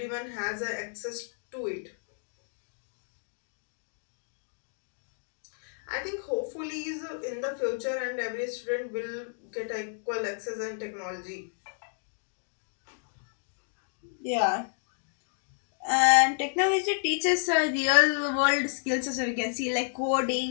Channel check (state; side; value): silent; right; digital silence